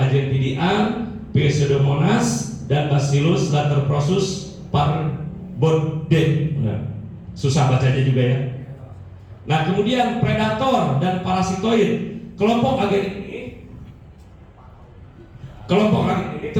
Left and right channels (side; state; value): both; identical; correlation 1.00